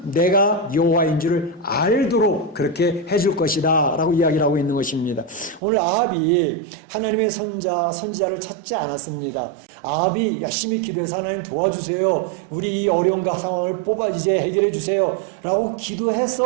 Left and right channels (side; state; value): left; drops out; at 5.6 s